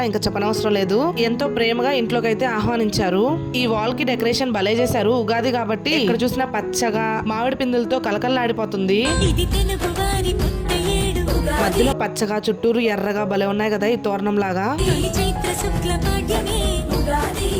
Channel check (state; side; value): identical; both; correlation 1.00